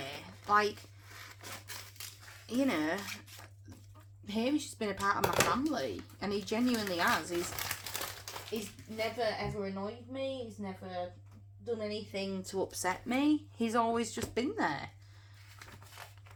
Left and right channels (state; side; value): identical; both; correlation 1.00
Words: Like, you know, Hamish has been a part of my family, and he genuinely has. He's never ever annoyed me. He's never done anything to upset me. He's always just been there.